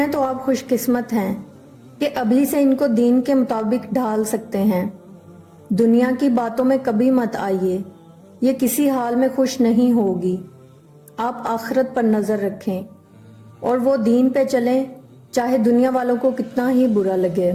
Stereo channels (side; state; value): both; identical; correlation 1.00